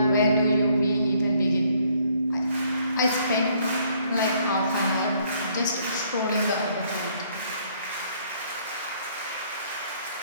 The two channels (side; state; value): both; inverted; correlation -0.65